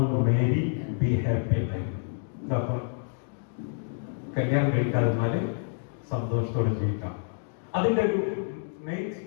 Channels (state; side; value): silent; right; digital silence